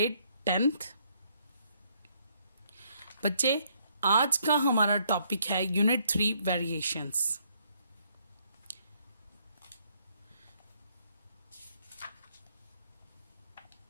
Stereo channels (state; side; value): inverted; both; correlation -0.69